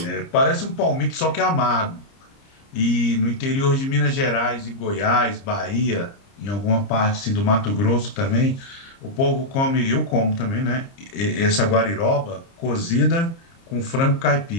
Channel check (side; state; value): right; late; 30 ms